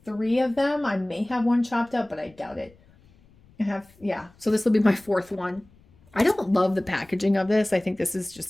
3 of them. I may have one chopped up, but I doubt it. I have, yeah. So this will be my fourth one. I don't love the packaging of this. I think this is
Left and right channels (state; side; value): noise; left; rumble, 29 dB below the sound